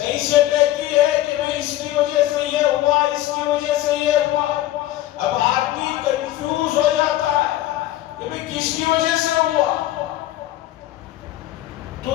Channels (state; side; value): quieter; right; 14.7 dB